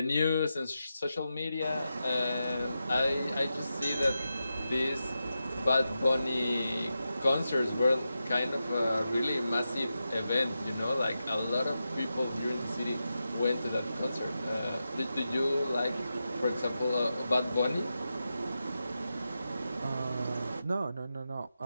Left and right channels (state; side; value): inverted; both; correlation -0.89